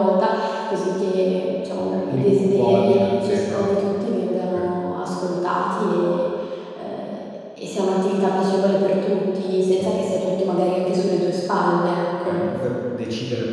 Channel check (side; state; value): both; identical; correlation 1.00